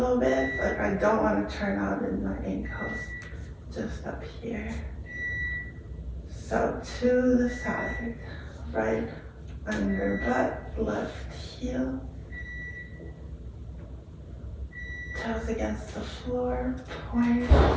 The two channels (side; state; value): both; identical; correlation 1.00